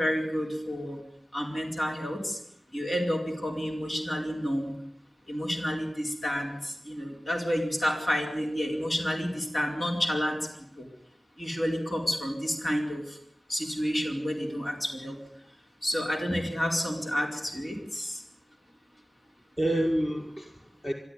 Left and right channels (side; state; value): both; normal; correlation 0.96